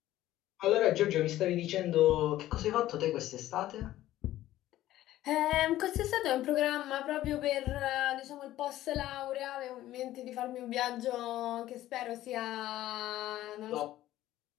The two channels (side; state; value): right; quieter; 14.4 dB